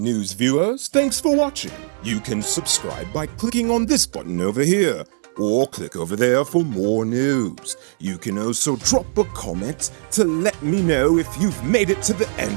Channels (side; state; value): left; silent; digital silence